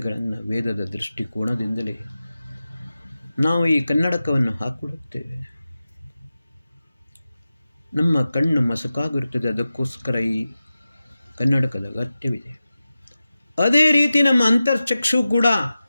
ವೇದದ ದೃಷ್ಟಿಕೋನದಿಂದಲೇ ನಾವು ಈ ಕನ್ನಡಕವನ್ನು ಹಾಕಿಕೊಳ್ಳುತ್ತೇವೆ. ನಮ್ಮ ಕಣ್ಣು ಮಸಕಾಗಿರುತ್ತದೆ, ಅದಕ್ಕೋಸ್ಕರ ಈ ಕನ್ನಡಕದ ಅಗತ್ಯವಿದೆ. ಅದೇ ರೀತಿ ನಮ್ಮ ಅಂತರ್ಚಕ್ಷು ಕೂಡ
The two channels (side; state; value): both; inverted; correlation -0.94